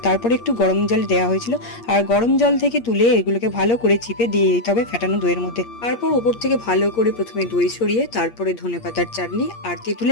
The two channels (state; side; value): late; right; 8.5 ms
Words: একটু গরম জল দেওয়া হয়েছিল। আর গরম জল থেকে তুলে এগুলোকে ভালো করে চিপে দিয়ে দিতে হবে ফেটানো দইয়ের মধ্যে। তারপর উপর থেকে ভালো করে প্রথমে দই ছড়িয়ে তারপরে ধনেপাতার চাটনি আর